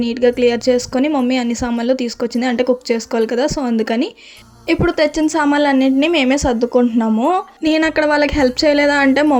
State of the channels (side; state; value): both; identical; correlation 1.00